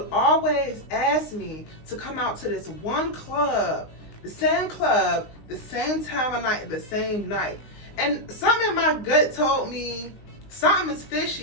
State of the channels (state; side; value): late; right; 19 ms